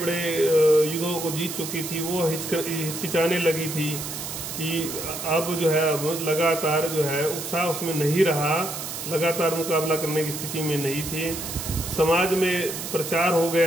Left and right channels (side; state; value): right; noise; hiss, 7 dB below the sound